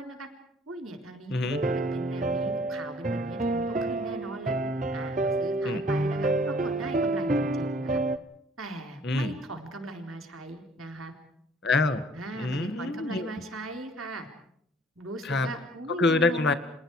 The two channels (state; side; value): normal; both; correlation 0.56